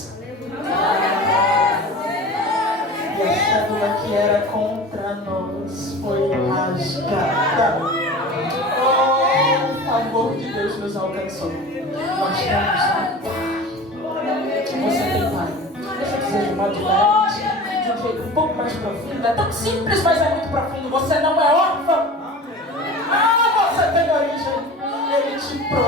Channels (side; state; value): both; normal; correlation 0.37